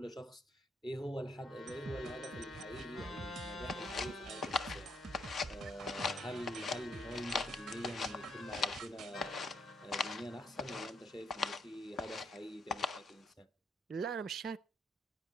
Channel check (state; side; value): normal; both; correlation 0.72